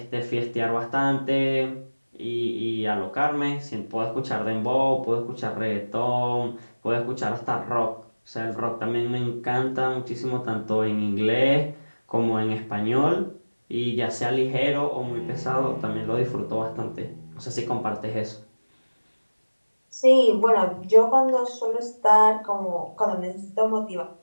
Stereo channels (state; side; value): inverted; both; correlation -1.00